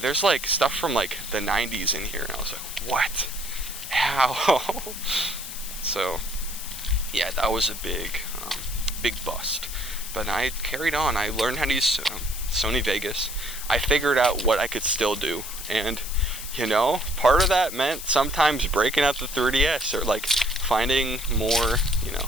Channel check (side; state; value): left; noise; hiss, 9 dB below the sound